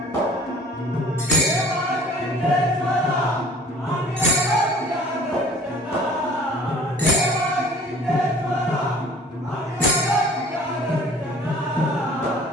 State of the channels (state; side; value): normal; both; correlation 0.49